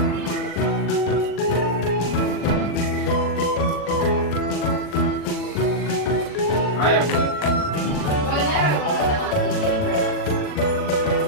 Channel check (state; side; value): late; right; 40 ms